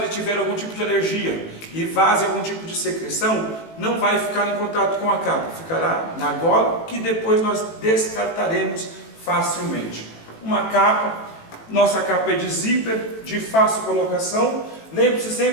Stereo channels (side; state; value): right; late; 18 ms